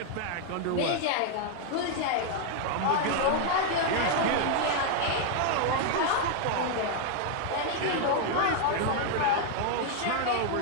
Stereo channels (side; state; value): both; different; correlation 0.00